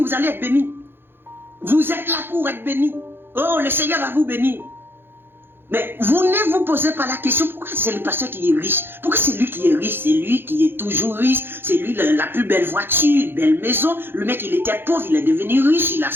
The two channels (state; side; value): late; left; 0.10 ms